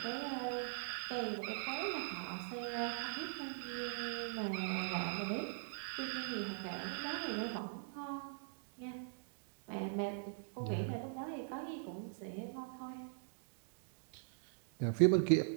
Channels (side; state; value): left; silent; digital silence